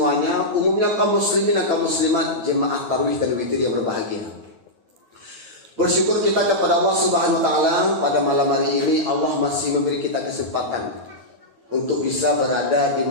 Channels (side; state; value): left; late; 9.3 ms